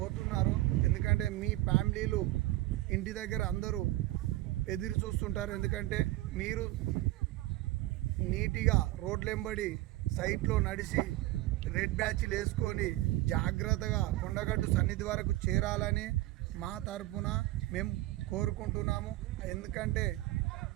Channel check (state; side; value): quieter; left; 17.2 dB